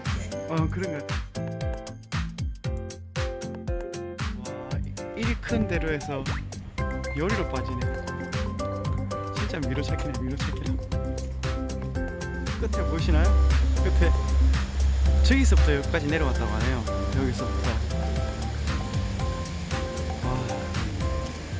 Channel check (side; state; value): both; identical; correlation 1.00